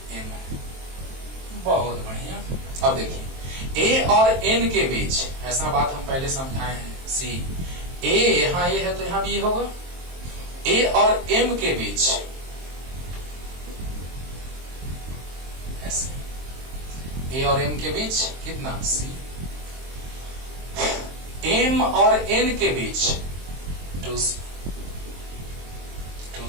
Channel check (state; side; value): late; left; 23 ms